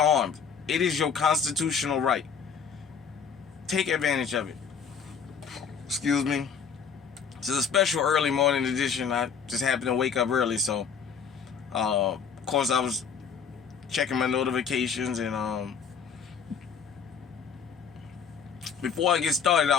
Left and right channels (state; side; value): quieter; right; 6.6 dB